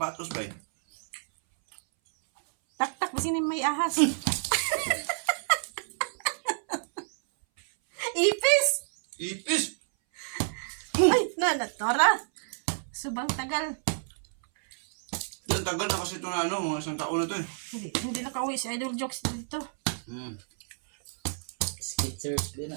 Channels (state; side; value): silent; left; 58 dB below the other